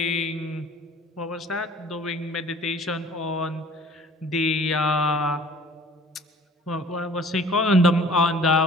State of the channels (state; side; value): normal; both; correlation 0.50